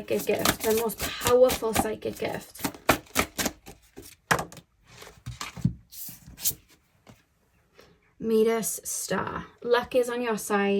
gift? The most powerful psychic gift. Midas star. Luck is on your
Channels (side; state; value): both; identical; correlation 1.00